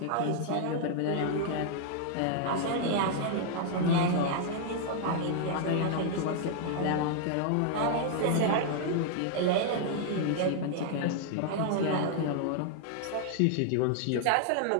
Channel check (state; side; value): different; both; correlation -0.01